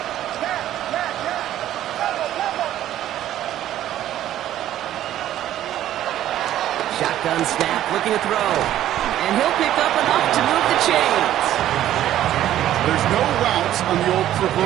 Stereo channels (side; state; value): left; quieter; 12.5 dB